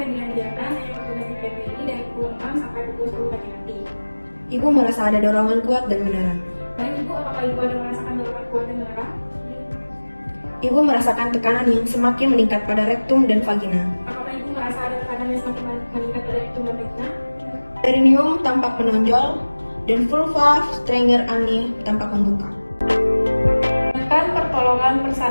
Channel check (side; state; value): both; inverted; correlation -1.00